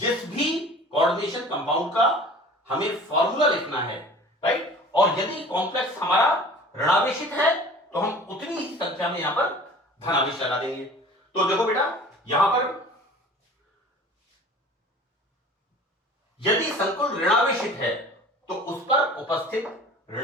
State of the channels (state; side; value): normal; both; correlation 0.44